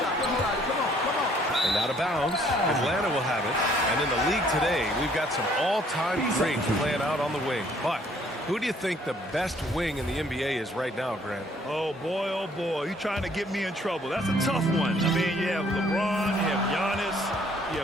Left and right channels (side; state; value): both; normal; correlation 0.62